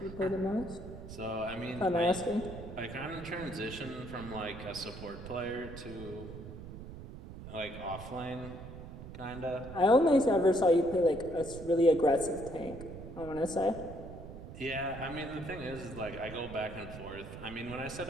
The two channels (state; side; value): noise; right; rumble, 12 dB below the sound